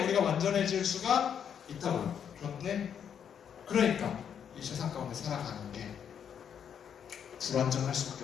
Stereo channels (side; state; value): right; quieter; 8.2 dB